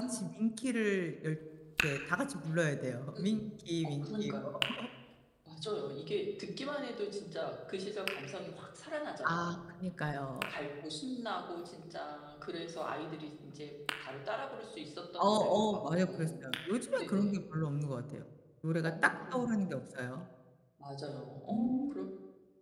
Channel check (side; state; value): both; identical; correlation 1.00